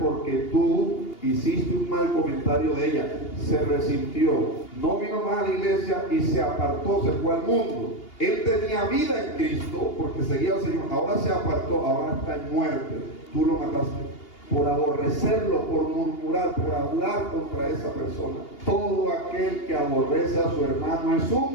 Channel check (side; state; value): right; late; 2.8 ms